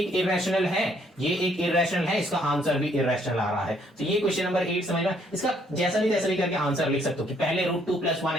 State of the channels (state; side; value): normal; both; correlation 0.67